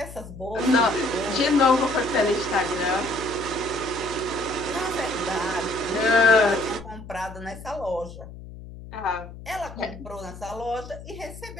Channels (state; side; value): noise; left; hum, 14 dB below the sound